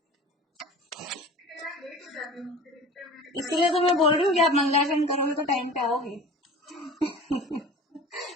इसलिए तो मैं बोल रही हूँ कि आप मंगलाचरण करोगे तो टाइम पे आओगे।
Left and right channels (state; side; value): normal; both; correlation 0.39